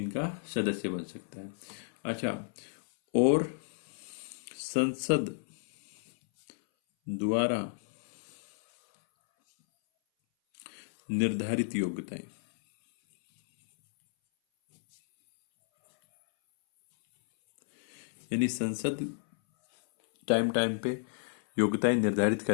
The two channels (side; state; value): right; silent; 57 dB below the other